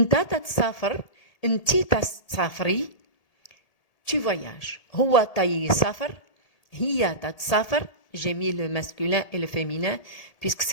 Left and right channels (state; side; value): late; right; 1.8 ms